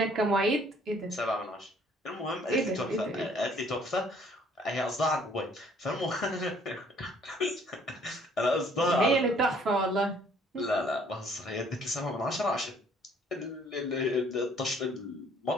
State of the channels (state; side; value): normal; both; correlation 0.60